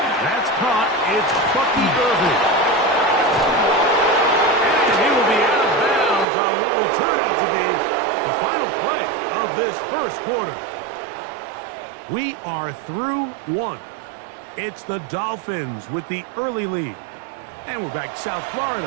That's caught. It's Bucky Irving. And he will be out of bounds on what will turn out to be The final play of this first quarter. We are through one. It's the Dolphins with the early lead. And we're back to South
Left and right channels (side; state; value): left; drops out; at 6.2 s